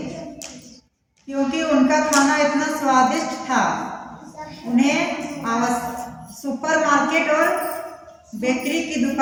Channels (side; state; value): both; identical; correlation 1.00